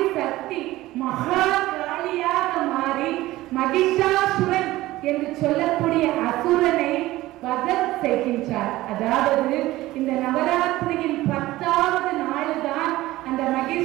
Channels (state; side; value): quieter; left; 17.1 dB